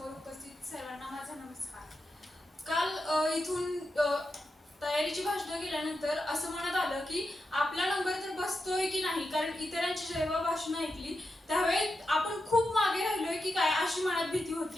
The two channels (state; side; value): normal; both; correlation 0.88